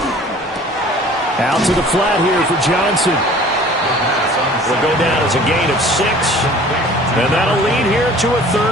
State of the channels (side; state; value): both; normal; correlation 0.48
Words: Out to the flat here for Johnson. Will go down as a gain of 6. And that'll lead here to a